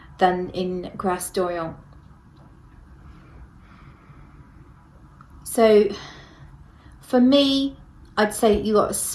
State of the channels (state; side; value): identical; both; correlation 1.00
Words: than in Grasse d'Orient. So for me, I'd say you got